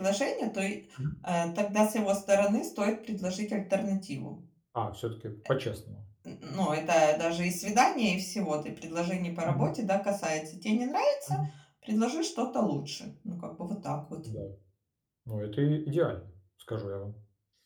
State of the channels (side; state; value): both; identical; correlation 1.00